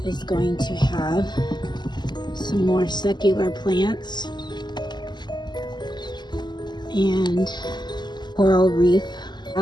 is going to have some more secular plants and coral reef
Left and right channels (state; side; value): late; right; 0.21 ms